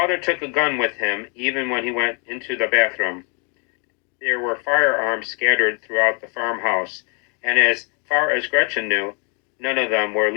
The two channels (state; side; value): quieter; right; 36.8 dB